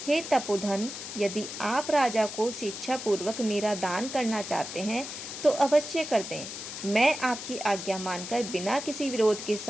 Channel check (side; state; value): left; noise; hiss, 8 dB below the sound